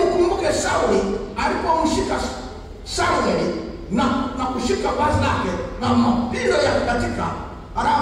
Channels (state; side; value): identical; both; correlation 1.00